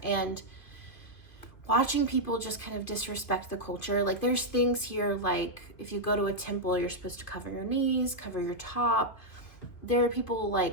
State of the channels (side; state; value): right; late; 2.5 ms